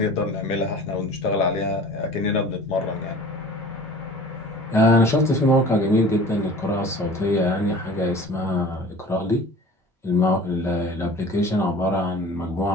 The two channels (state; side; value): normal; both; correlation 0.43